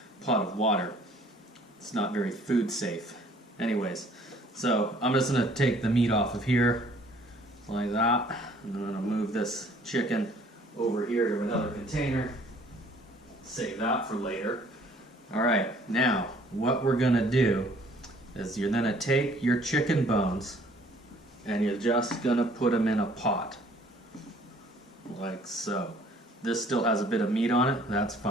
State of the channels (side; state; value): both; normal; correlation 0.57